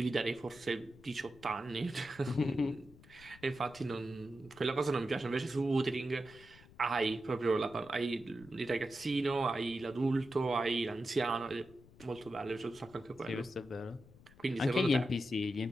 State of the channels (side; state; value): left; noise; rumble, 23 dB below the sound